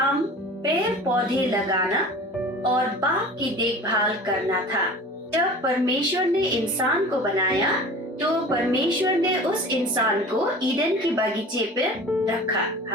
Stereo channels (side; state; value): both; normal; correlation 0.40